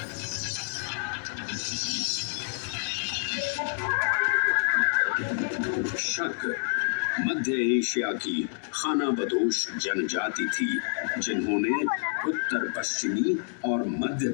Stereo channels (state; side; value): silent; right; digital silence